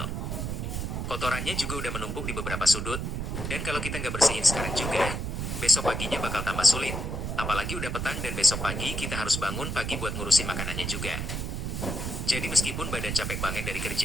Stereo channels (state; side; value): noise; right; rumble, 3 dB below the sound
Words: Kotorannya juga udah menumpuk di beberapa sudut, dan kalau kita nggak bersihin sekarang juga, besok paginya bakal tambah sulit. Apalagi udah petang dan besok pagi kita harus bangun pagi buat ngurusin makanannya juga. Jadi meskipun badan capek banget dari